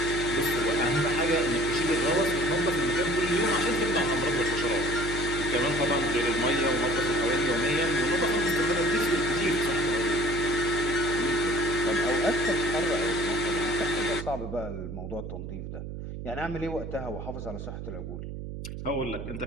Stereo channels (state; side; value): noise; right; hum, 8 dB below the sound